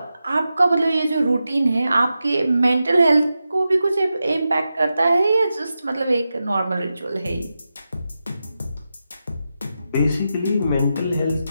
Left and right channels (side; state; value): both; inverted; correlation -0.90